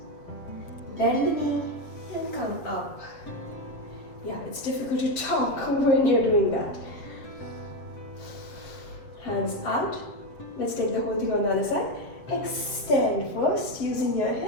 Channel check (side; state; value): right; late; 7.8 ms